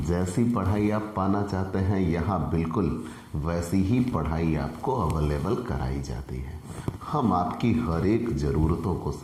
जैसी पढ़ाई आप पाना चाहते हैं, यहाँ बिल्कुल वैसी ही पढ़ाई आपको अवेलेबल कराई जाती है। हम आपकी हर एक ज़रूरतों को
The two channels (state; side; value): identical; both; correlation 1.00